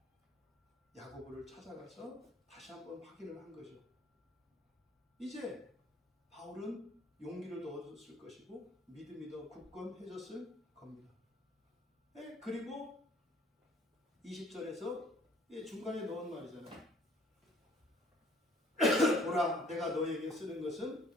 야고보를 찾아가서 다시 한번 확인을 한 거죠. 이제 바울은 용기를 더 얻었을 것이고 믿음이 더 굳건해졌을 겁니다. 그리고 20절에서 중간에 넣은 말이잖아요. 보라, 내가 너에게 쓰는 것은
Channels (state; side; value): normal; both; correlation 0.57